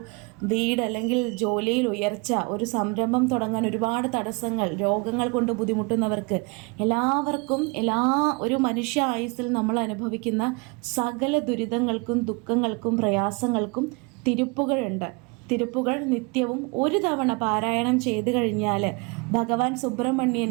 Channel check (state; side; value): quieter; left; 29.3 dB